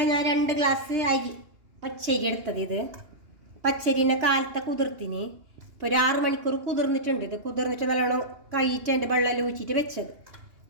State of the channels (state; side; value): late; left; 2.8 ms